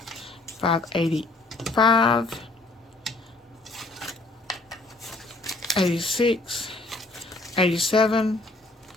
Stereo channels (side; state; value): right; quieter; 3.1 dB